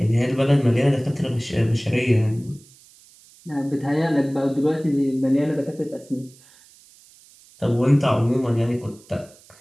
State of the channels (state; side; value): noise; right; hiss, 26 dB below the sound